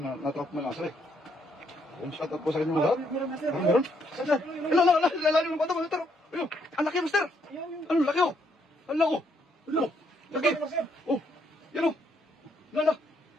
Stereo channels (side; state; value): both; normal; correlation 0.72